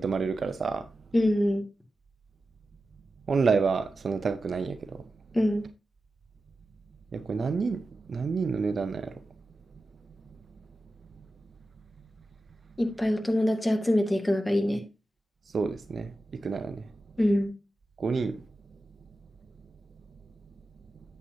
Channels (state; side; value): normal; both; correlation 0.92